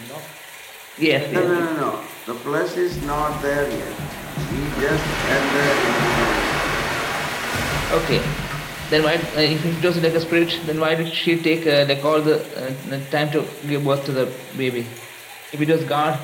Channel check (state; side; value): identical; both; correlation 1.00